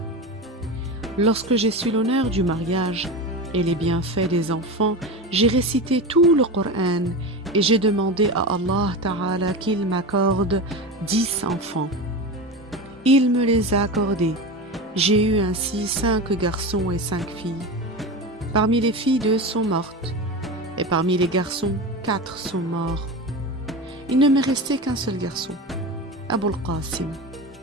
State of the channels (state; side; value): normal; both; correlation 0.24